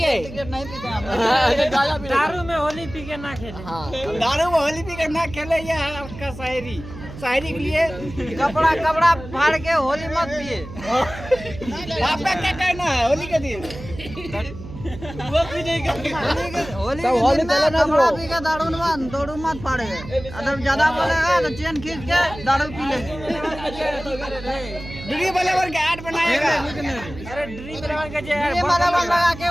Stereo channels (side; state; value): right; noise; hum, 13 dB below the sound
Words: सिगरेट नहीं पीते हम। दारू में होली पी के ना खेले। हाँ, दारू में होली पी कर ना खेले, ये है आपका शायरी। शायरी के लिए कपड़ा फाड़ के होली मत पिए। आपका क्या कहना है होली के दिन? वो भी नहीं करते। होली के दिन में कपड़ा पी के दारू मत फाड़े। अगर ज्यादा बोलेगा तो चेन खींच के दारू पी लेगी। ड्री बलेवर के ऐड बनाएगा। अरे ड्रीम इलेवन का जो ये बराबर लगा के